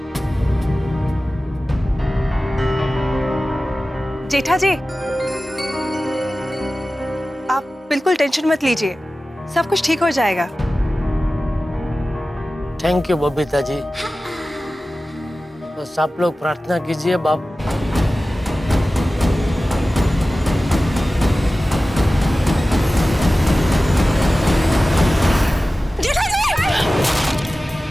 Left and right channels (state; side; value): normal; both; correlation 0.96